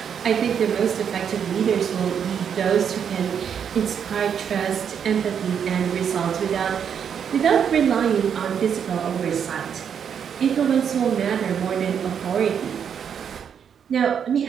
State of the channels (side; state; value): left; quieter; 7.8 dB